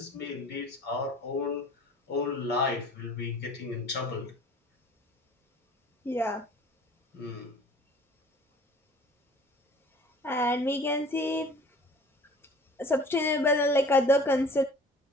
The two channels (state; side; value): normal; both; correlation 0.47